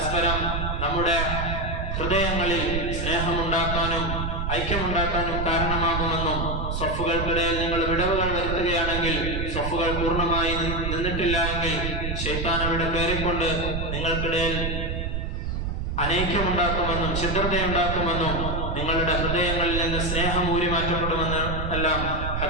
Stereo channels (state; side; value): noise; right; rumble, 2 dB below the sound